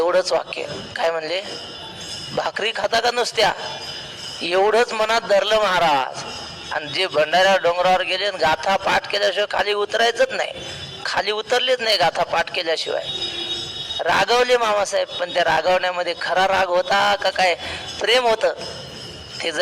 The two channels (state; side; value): identical; both; correlation 1.00